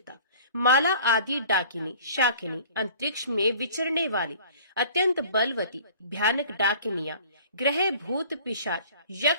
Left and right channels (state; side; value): inverted; both; correlation -0.48